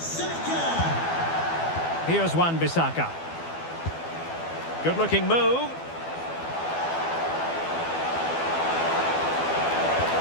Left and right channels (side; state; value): right; late; 12 ms